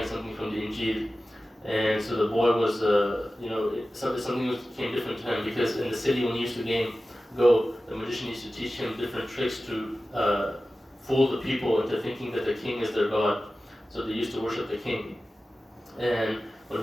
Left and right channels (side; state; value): both; normal; correlation 0.95